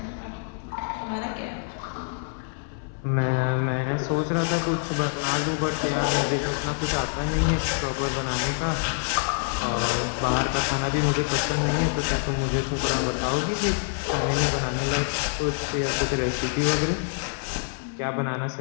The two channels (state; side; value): silent; right; 61 dB below the other